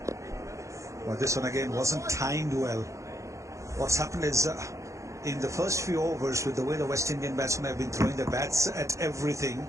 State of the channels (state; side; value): late; left; 0.15 ms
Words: Well, this one again wasn't timed well. What's happened is in the first few overs, with the way the West Indian batsmen have been throwing their bats at everything,